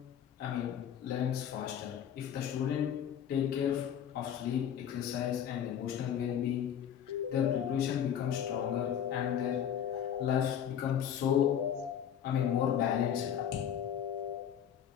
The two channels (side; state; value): right; quieter; 9.3 dB